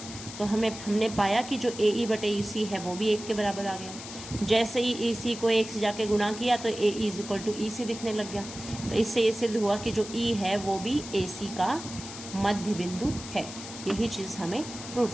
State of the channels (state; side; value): noise; left; hiss, 12 dB below the sound